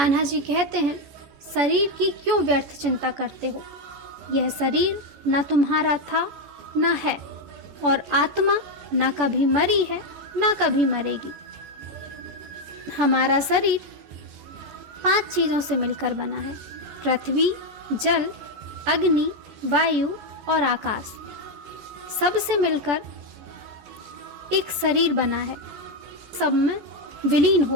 जी कहते हैं, शरीर की क्यों व्यर्थ चिंता करते हो? यह शरीर न तुम्हारा था न है, और आत्मा न कभी मरी है न कभी मरेगी। हमारा शरीर 5 चीजों से मिलकर बना है, पृथ्वी, जल, अग्नि, वायु और आकाश। सबसे मिलकर एक शरीर बना है, सब में विलीन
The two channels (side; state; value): left; late; 14 ms